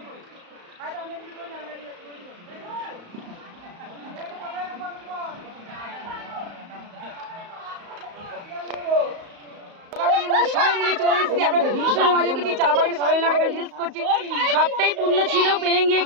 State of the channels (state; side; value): late; left; 34 ms